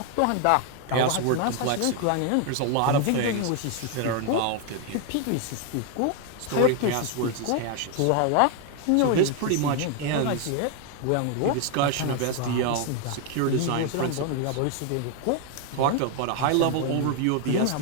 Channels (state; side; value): different; both; correlation 0.01